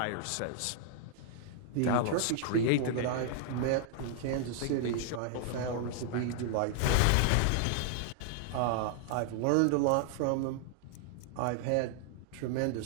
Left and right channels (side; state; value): both; different; correlation 0.00